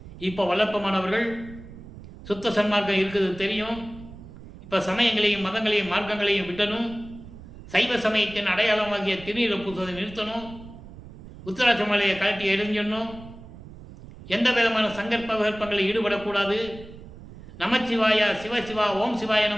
இப்போ வல்லப்பமானவர்கள் சுத்த சன்மார்க்கம் இருக்குது தெரியும். இப்போ சமயங்களையும் மதங்களையும் மார்க்கங்களையும் விட்டணும். சைவ சமயத்தின் அடையாளமாகிய திருநீரை பூசுவதை நிறுத்தணும். உத்தராட்ச மலையை கழட்டி எரிஞ்சிடணும். எந்த விதமான சங்கற்ப விகற்பங்களில் ஈடுபடக்கூடாது. நமச்சிவாயா சிவசிவா ஓம் சிவாய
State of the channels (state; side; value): noise; right; rumble, 16 dB below the sound